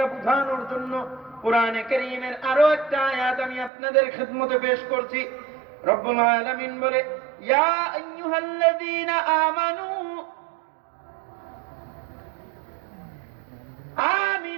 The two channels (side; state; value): left; drops out; at 3.7 s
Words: বোঝানোর জন্য কোরআনে কারীমের আরো একটা আয়াত আমি আপনাদের খিদমতে পেশ করছি। রব্বুল আলামিন বলে, ইয়া আইয়ুহাল্লাযীনা আমানু